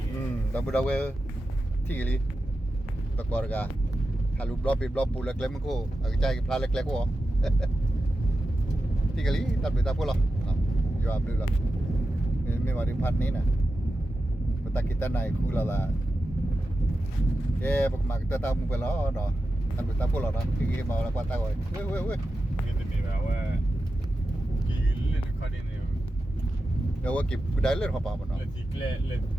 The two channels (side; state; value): both; normal; correlation 0.91